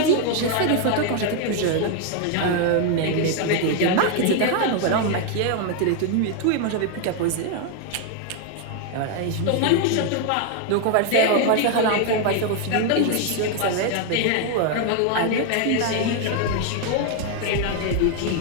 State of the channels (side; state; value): both; different; correlation 0.00